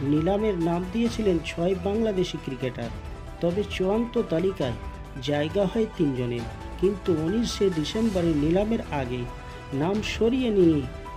নিলামের নাম দিয়েছিলেন 6 বাংলাদেশি ক্রিকেটার, তবে চূড়ান্ত তালিকায় জায়গা হয় 3 জনের। কিন্তু 19শে ডিসেম্বরের নিলামের আগে নাম সরিয়ে নিয়ে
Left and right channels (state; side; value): identical; both; correlation 1.00